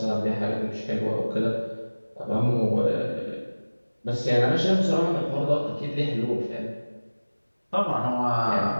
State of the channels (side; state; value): both; inverted; correlation -1.00